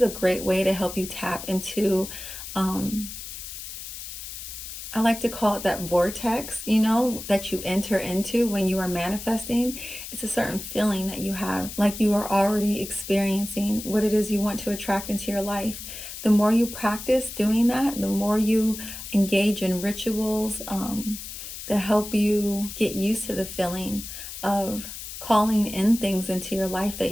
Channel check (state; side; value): noise; left; hiss, 10 dB below the sound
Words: a great way to help you tap into I like to call it that vortex, you know, that you enter into when you are manifesting. It's a certain feeling that you have, like you are already experiencing what it is you want to attract into your life. The more you practice doing that, the more you engage in rituals that help you get used to the feeling of calling in things into your life that